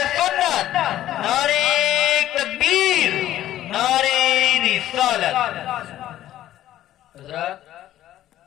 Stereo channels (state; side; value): quieter; right; 13.1 dB